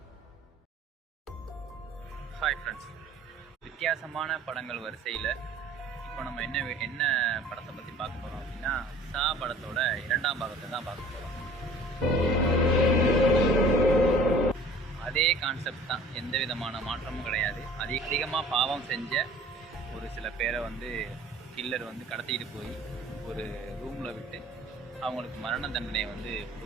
hi friends, வித்தியாசமான படங்கள் வரிசையில் இப்போ நம்ம என்ன படத்தை பற்றி பார்க்க போகிறோம் அப்படின்னா, சா படத்தோட 2ஆம் பாகத்தை தான் பார்க்க போகிறோம். அதே கான்செப்ட் தான், எந்த விதமான மாற்றமும் கிடையாது. அதிகமாக பாவம் செஞ்ச ஒரு சில பேரை கில்லர் கடத்திட்டு போய் ஒரு ரூமில் விட்டு அவங்களுக்கு மரண தண்டனையை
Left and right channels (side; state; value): both; normal; correlation 0.48